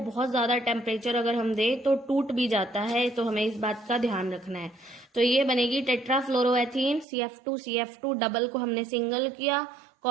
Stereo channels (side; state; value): left; drops out; at 7.1 s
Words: बहुत ज्यादा टेम्परेचर अगर हम दे तो टूट भी जाता है, तो हमें इस बात का ध्यान रखना है। तो ये बनेगी टेट्राफ्लोरोएथीन, CF2 डबल को हमने सिंगल किया,